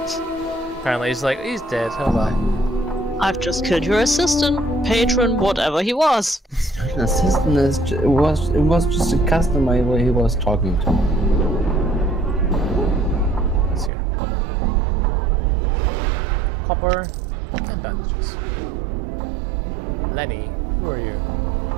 Okay. Apparently he's dead. Hold on. I've just killed your assistant, patron, whatever he was. An assistant it was just a customer where he was talking to. Let's hear. Copper and bandages. Lenny, who are you?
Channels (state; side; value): drops out; left; at 13.9 s